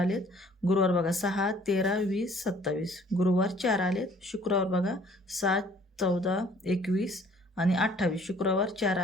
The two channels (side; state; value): both; normal; correlation 0.57